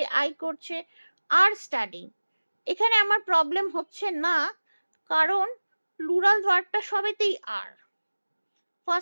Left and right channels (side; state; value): both; inverted; correlation -1.00